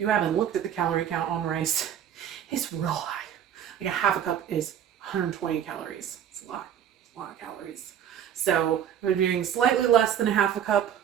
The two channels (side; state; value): left; quieter; 9.5 dB